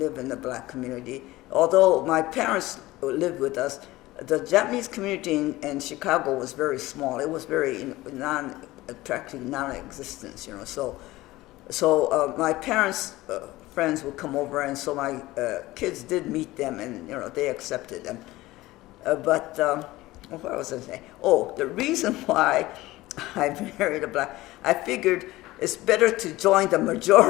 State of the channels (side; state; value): right; quieter; 18.3 dB